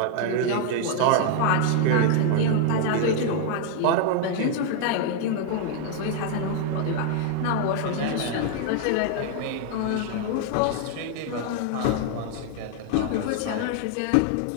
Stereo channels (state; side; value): different; both; correlation 0.00